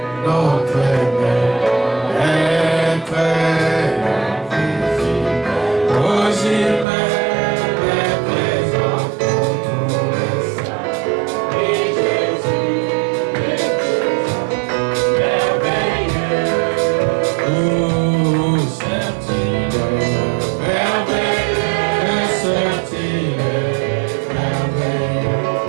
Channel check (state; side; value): drops out; left; at 6.9 s